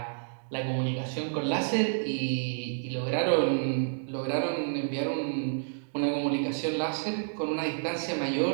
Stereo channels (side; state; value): left; silent; digital silence